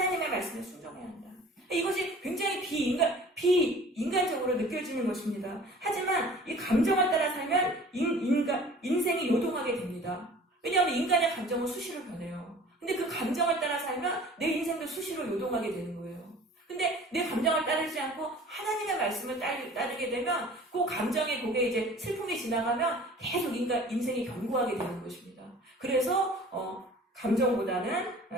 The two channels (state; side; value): normal; both; correlation 0.46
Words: 말씀에 순종해야 한다. 이것이 굉장히 비인간적으로 느껴지는 것입니다. 하지만 이 감정을 따라 살면 인생이 요동하게 됩니다. 왜냐하면 인간의 감정은 수시로 변해요. 근데 그 감정을 따라 살면 내 인생도 수시로 요동하게 되는 거예요. 근데 내 감정을 따르지 않고 하나님의 말씀을 따르게 되면 그 감정의 곡에 이제 슬픔이 지나가면 계속 인생이 견고하게 되는 것입니다. 그래서 감정보다는